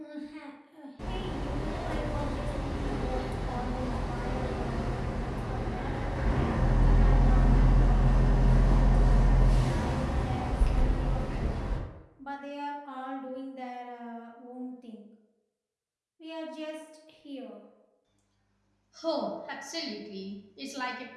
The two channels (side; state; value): both; identical; correlation 1.00